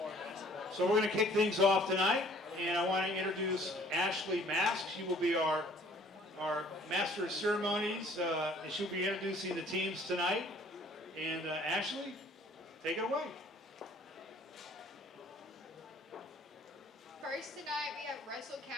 So we're going to kick things off tonight, and I want to introduce Ashley Mask. She will be our Master of Ceremonies, and she'll be introducing the teams tonight. And Ashley, take it away. First tonight we have Russell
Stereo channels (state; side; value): normal; both; correlation 0.56